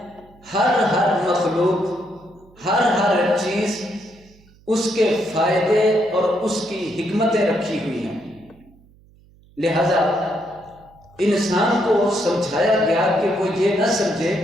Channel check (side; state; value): right; noise; hum, 28 dB below the sound